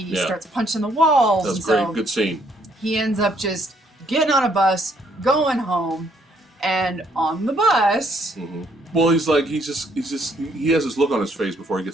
starts punching the walls. That's great. Good scene. He ends up just getting on a bus, going home, and on the bus. Well, he has this look on his face before he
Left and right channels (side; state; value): both; normal; correlation 0.68